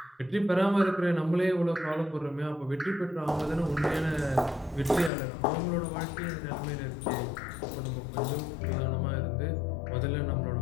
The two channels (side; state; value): right; drops out; at 5.1 s